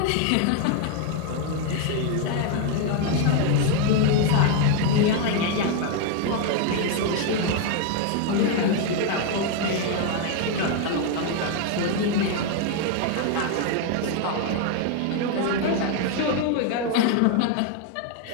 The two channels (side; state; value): both; different; correlation 0.01